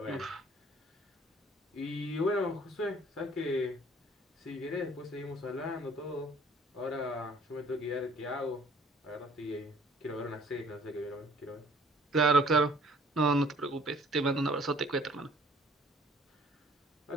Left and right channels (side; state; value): both; normal; correlation 0.56